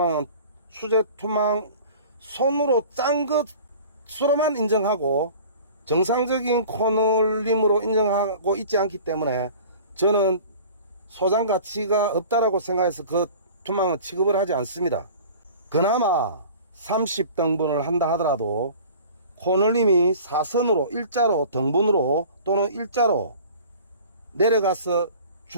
수제투망 손으로 짠 것으로만 인정하고 정상적인 코널림으로 인정하고 있지 않기 때문에 저는 소장 가치가 없다라고 생각해서 그 투망은 취급을 하지 않습니다. 그나마 30등분을 한다 하더라도 코널림이 사선으로 일자로 등분으로 또는 일자로 내려가서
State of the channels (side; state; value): both; inverted; correlation -0.43